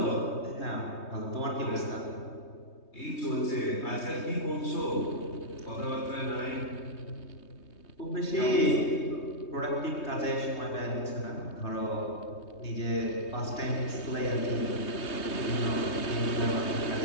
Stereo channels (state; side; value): late; right; 3.2 ms